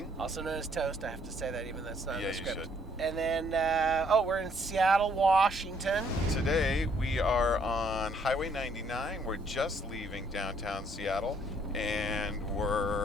also known as Toast. I have to say that even though that's not in the script. You should. And then, we're in Seattle, Washington. Today we are on Highway 99. We're just leaving downtown Seattle, and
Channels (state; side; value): normal; both; correlation 0.66